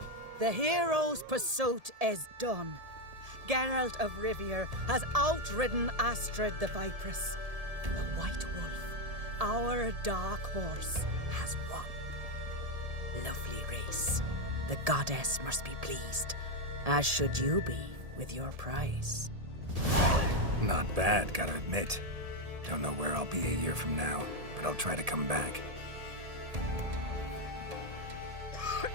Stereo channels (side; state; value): left; late; 1.7 ms